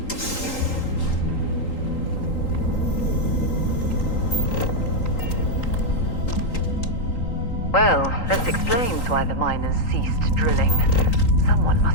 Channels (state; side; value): late; right; 3.8 ms